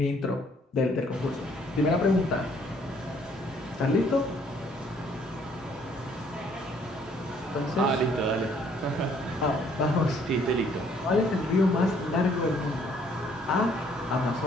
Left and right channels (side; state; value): both; normal; correlation 0.63